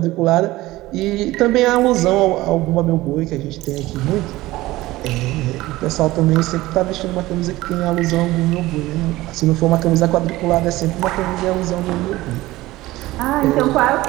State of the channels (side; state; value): left; quieter; 18.1 dB